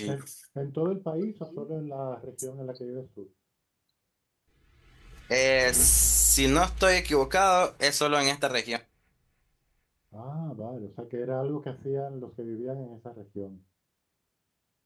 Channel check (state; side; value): identical; both; correlation 1.00